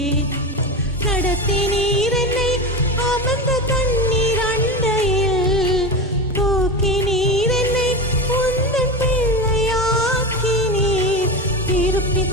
நடத்தினீர் என்னை அமர்ந்த தண்ணீர் அண்டையில், தூக்கினீர் என்னை உந்தன் பிள்ளையாக்கினீர். திருப்பி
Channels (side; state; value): both; normal; correlation 0.22